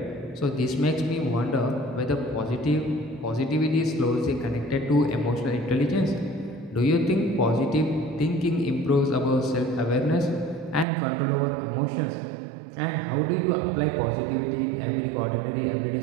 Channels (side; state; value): left; drops out; at 10.9 s